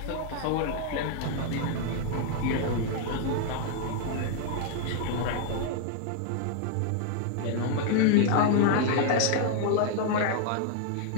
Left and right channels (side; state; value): both; different; correlation 0.00